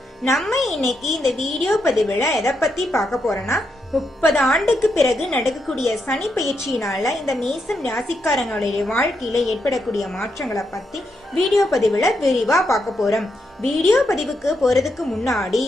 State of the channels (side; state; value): both; normal; correlation 0.81